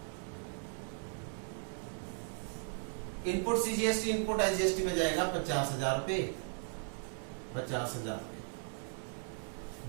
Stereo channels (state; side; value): silent; left; 53 dB below the other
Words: input CGST input SGST में जाएगा 50,000 रुपए। 50,000